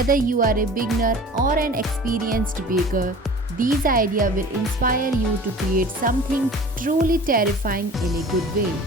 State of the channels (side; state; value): both; normal; correlation 0.42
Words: you are a beginner or an experienced baker, these ideas will inspire you to create something truly terrifying in a good way.